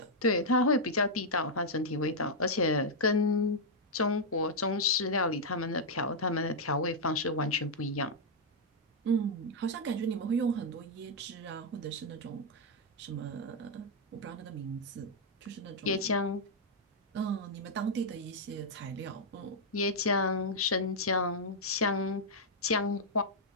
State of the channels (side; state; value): both; normal; correlation -0.04